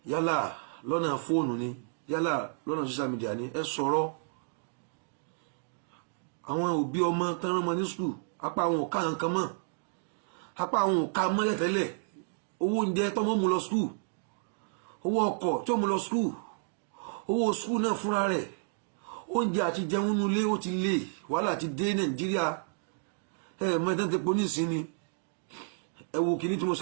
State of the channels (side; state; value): left; silent; digital silence